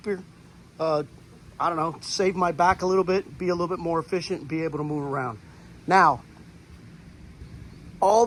save my back a little bit, be a little bit more efficient, and be able to move around. Now, all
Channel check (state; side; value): identical; both; correlation 1.00